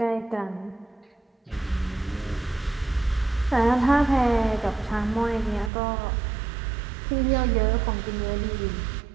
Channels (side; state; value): left; drops out; at 5.7 s